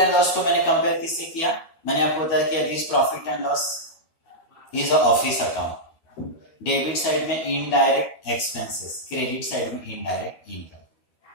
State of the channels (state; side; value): late; right; 13 ms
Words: and loss को मैंने compare किससे किया? मैंने आपको बताया कि this profit and loss is a office account. Debit side में indirect expenses, credit side में indirect income.